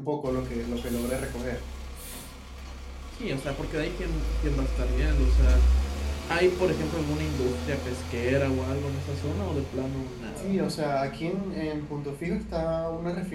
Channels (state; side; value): identical; both; correlation 1.00